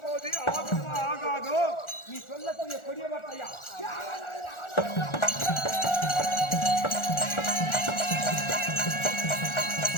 போது ஆகுமா ஆகாதோ நீ சொல்லக்கூடிய கொடிய வார்த்தையா?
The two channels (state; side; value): late; right; 1.4 ms